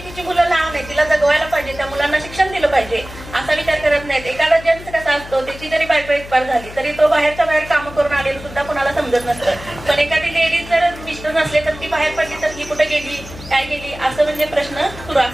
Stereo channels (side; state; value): left; noise; hum, 15 dB below the sound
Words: तिची मुलं लहान आहे, तिला जगवायला पाहिजे, त्या मुलांना शिक्षण दिलं पाहिजे असा विचार करत नाहीत। एखादा जेंट्स कसा असतो, त्याची जरी बायको एक्सपायर झाली तरी तो बाहेरच्या बाहेर कामं करून आलेलं सुद्धा कोणाला समजत नसतं। पण एखादी लेडीज जर मिस्टर नसले तर ती बाहेर पडली तर ही कुठे गेली, काय गेली असं म्हणजे प्रश्न सुरू